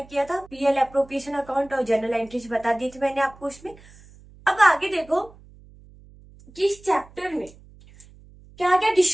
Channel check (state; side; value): noise; right; hum, 24 dB below the sound